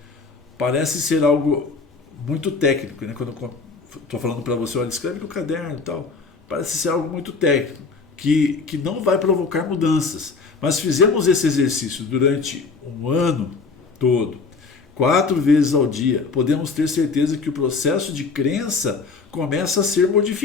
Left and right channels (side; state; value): right; quieter; 4.5 dB